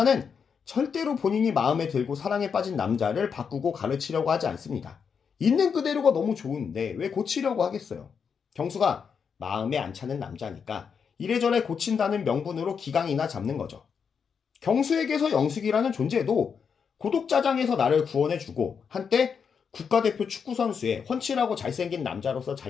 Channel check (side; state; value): right; quieter; 6.5 dB